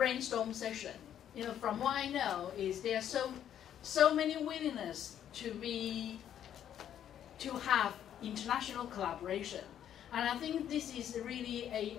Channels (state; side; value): quieter; right; 10.1 dB